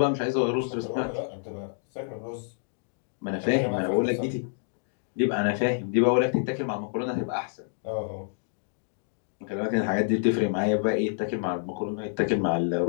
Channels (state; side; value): silent; right; digital silence